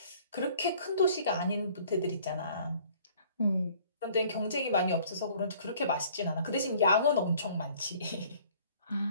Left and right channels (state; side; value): inverted; both; correlation -0.55